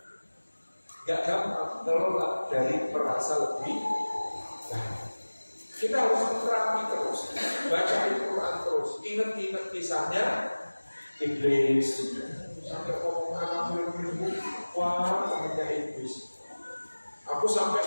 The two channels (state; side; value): inverted; both; correlation -1.00